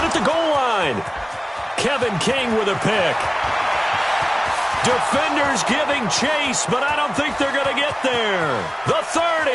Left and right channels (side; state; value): both; identical; correlation 1.00